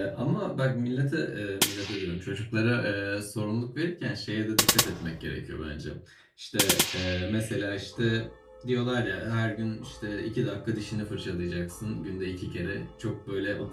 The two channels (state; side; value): identical; both; correlation 1.00